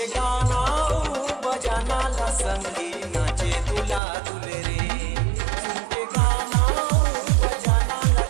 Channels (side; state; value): left; drops out; at 4.0 s